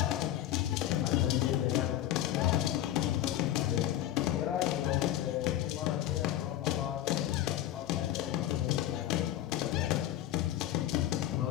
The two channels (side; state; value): right; quieter; 12.9 dB